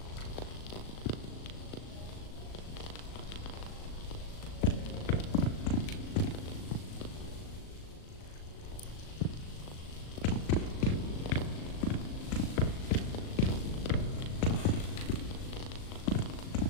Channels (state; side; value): late; right; 38 ms